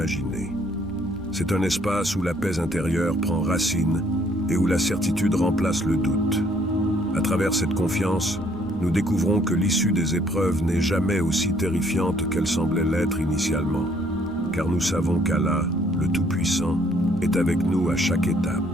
C'est un espace où la paix intérieure prend racine et où la certitude remplace le doute. À travers cette confiance, nous découvrons que l'issue des épreuves n'est jamais aussi terrifiante qu'elle semblait l'être initialement, car nous savons qu'Allah, le Tout-Puissant, est avec nous à chaque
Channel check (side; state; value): left; noise; rumble, 21 dB below the sound